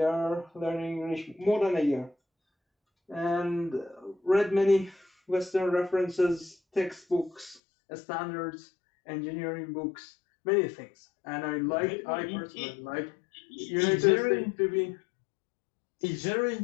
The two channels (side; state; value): right; drops out; at 7.6 s